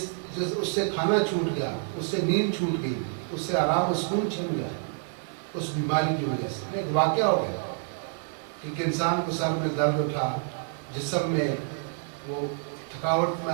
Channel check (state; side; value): silent; left; 59 dB below the other